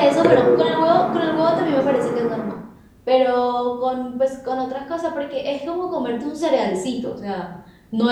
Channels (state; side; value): identical; both; correlation 1.00